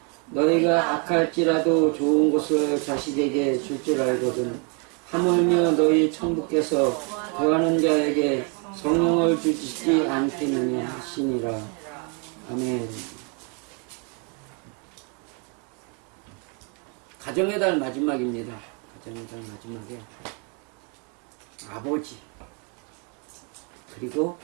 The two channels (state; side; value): quieter; left; 35.8 dB